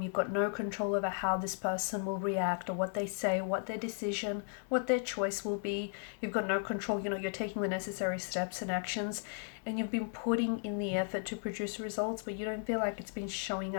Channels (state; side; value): silent; right; 54 dB below the other